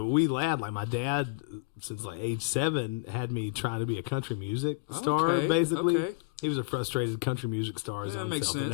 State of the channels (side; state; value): right; quieter; 25.0 dB